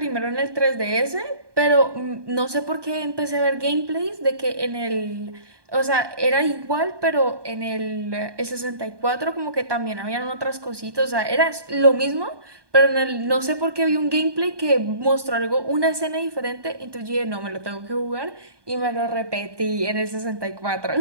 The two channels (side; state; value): left; late; 1.2 ms